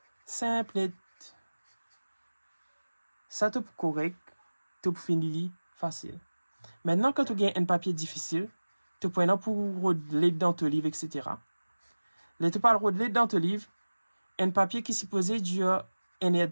simple, ça te peut correct, te peut finir facile. Maintenant, quand tu as un papier difficile, tu peux pour roder dans ton livre, etc. Là, tu peux roder dans ton livre, un papier qui est supposé durer 1 heure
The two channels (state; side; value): inverted; both; correlation -1.00